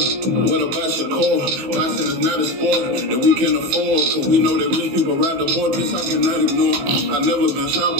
what about Shakur? Boxing is not a sport that we can afford. Cause we know that rich people ride the board. This I cannot ignore. I've never been shot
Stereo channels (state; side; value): late; left; 16 ms